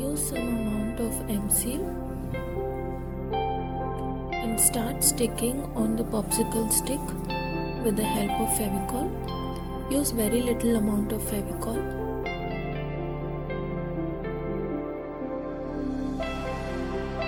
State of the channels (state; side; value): identical; both; correlation 1.00